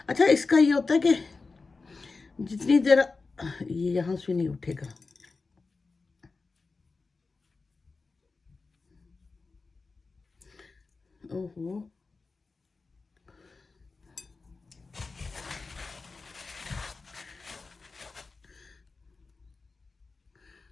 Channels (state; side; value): quieter; right; 4.1 dB